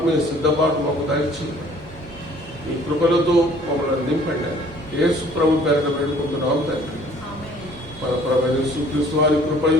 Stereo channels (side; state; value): both; normal; correlation 0.55